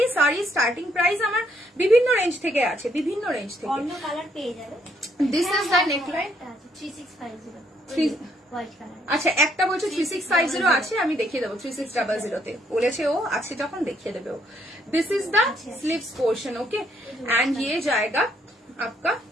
শাড়ি স্টার্টিং প্রাইস আমার বিভিন্ন রেঞ্জ থেকে আছে, বিভিন্ন রেঞ্জ থেকে অন্য কালার পেয়ে যাবে। This is the neckline 3650 white colour. আচ্ছা, একটা বলছো 3650 আছে, আমি দেখিয়ে দেবো 3600 তে বলেছে ও, আছে যখন দেখিয়ে দেবে ও। This is the sleeves portion. Okay, and ये जाएगा आपका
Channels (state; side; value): normal; both; correlation 0.70